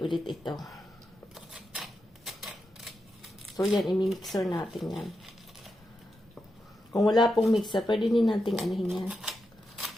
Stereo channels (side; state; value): both; normal; correlation 0.87